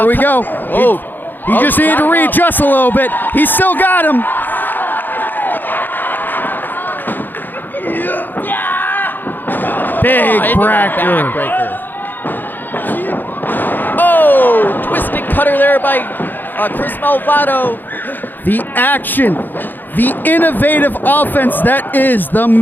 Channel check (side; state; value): right; late; 0.090 ms